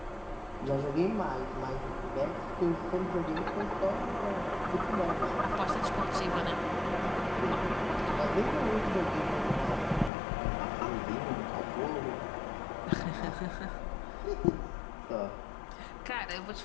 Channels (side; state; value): right; drops out; at 10.1 s